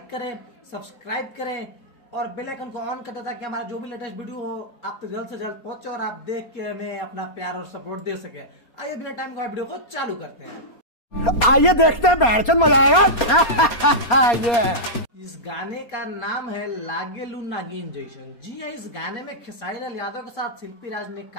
करें, सब्सक्राइब करें और बेल आइकन को ऑन कर दें ताकि हमारा जो भी लेटेस्ट वीडियो हो आप तक जल्द से जल्द पहुंचे और आप देख के हमें अपना प्यार और सपोर्ट दे सके। आइए बिना टाइम का वीडियो को चालू करते हैं। आइए देखते हैं, बैठचंद मजा आएगा। ये इस गाने का नाम है लागेलू नागिन जैसन। जी हाँ, इस गाने में खेसारी लाल यादव के साथ शिल्पी राज ने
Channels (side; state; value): right; late; 4.3 ms